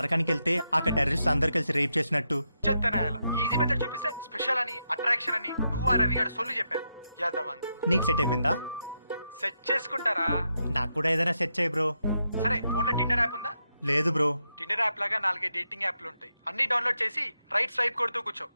వెళ్తే అక్కడ టెర్రరిస్ట్ అందరు కలిసి రేప్ చేసినట్టు. చెత్తనాయాల ఈజీ మెథడ్ చూపిస్తే స్పెషల్ అని, అట్రాక్షన్ అని నువ్వు ఆ రవి గారు సొల్లు చెప్పారు. యాదవ్ నీకు సెట్ అయిపోయిందా? సెట్ చేసుకుంటారా? నాకు కూడా ఏదైనా సెట్ చేయి బ్రో. సరే, ఫోన్ లో టిండర్ యాప్ ఉందా? లేదు బ్రో. టిండర్ యాప్ లాగా 4 డేటింగ్ యాప్లు ఉంటాయి. అన్ని డౌన్లోడ్ చేసి రైట్ స్వైప్ కొడుతూ కూర్చో,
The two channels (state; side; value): inverted; both; correlation -0.84